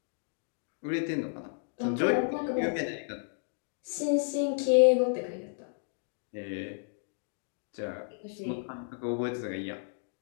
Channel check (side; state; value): right; silent; digital silence